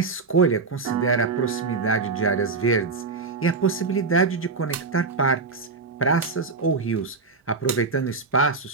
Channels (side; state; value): left; quieter; 4.3 dB